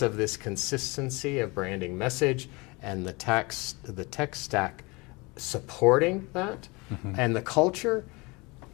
of this consistency of branding message and the tech stack supporting that and the culture.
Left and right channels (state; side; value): quieter; right; 26.2 dB